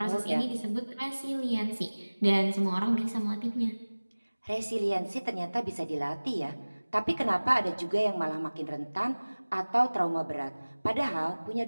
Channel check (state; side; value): inverted; both; correlation -1.00